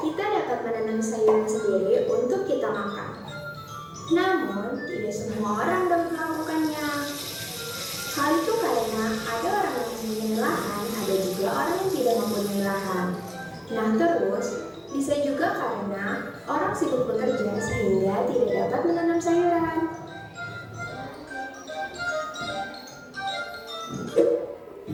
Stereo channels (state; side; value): identical; both; correlation 1.00